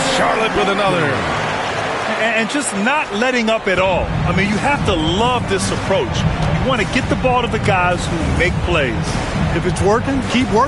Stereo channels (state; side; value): identical; both; correlation 1.00